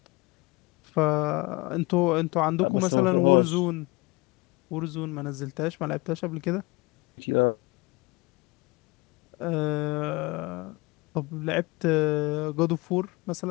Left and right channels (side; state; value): right; quieter; 24.1 dB